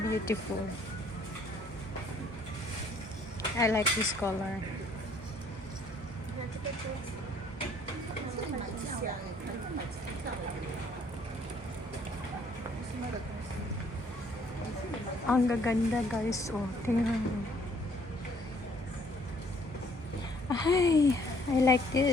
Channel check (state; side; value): normal; both; correlation 0.62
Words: I like this color. Ang gaganda guys. Oh, tingnan mo. Ay, I like